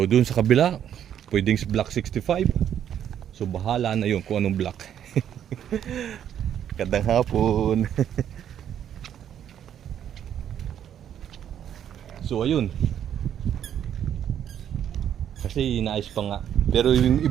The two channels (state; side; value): quieter; left; 9.8 dB